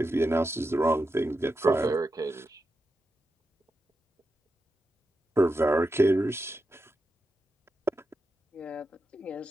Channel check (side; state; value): both; normal; correlation 0.89